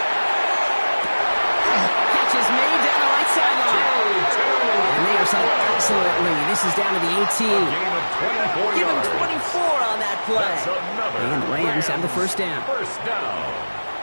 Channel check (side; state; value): both; inverted; correlation -1.00